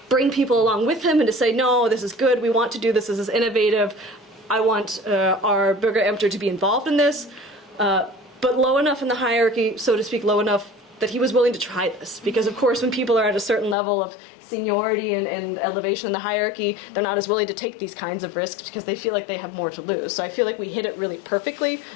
bring people along with him and to say, no, this is good, we want to do this is innovative, I want our Bürgerämter to be involved in this, but low enough in the hierarchy, so to speak, low enough that he was willing to try this. Because of course when people are at a certain level of seniority and elevation in the hierarchy, they're not as willing to take these kinds of risks because they feel like they have more to lose. So I feel like we hit it really perfectly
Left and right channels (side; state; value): right; drops out; at 13.8 s